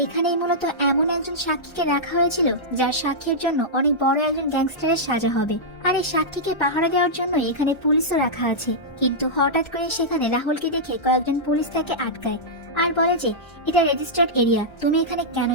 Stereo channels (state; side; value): late; right; 1.3 ms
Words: এখানেই মূলত এমন একজন সাক্ষীকে রাখা হয়েছিল যার সাক্ষীর জন্য অনেক বড় একজন গ্যাংস্টারের সাজা হবে। আর এই সাক্ষীকে পাহারা দেওয়ার জন্য এখানে পুলিশও রাখা আছে। কিন্তু হঠাৎ করে সেখানে রাহুলকে দেখে কয়েকজন পুলিশ তাকে আটকায় আর বলে যে এটা রেজিস্টার্ড এরিয়া, তুমি এখানে কেন